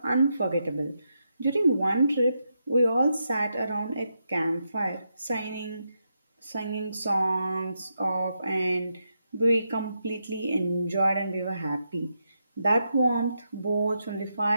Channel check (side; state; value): both; inverted; correlation -0.84